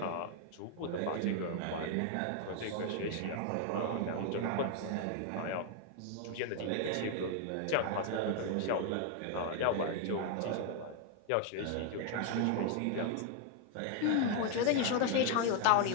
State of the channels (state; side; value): different; both; correlation 0.00